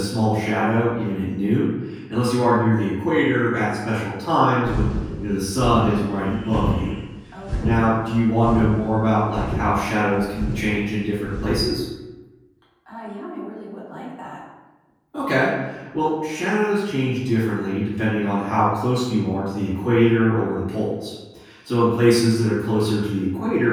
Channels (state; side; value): identical; both; correlation 1.00